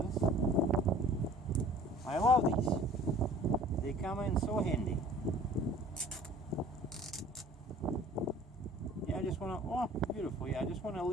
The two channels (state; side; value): normal; both; correlation 0.49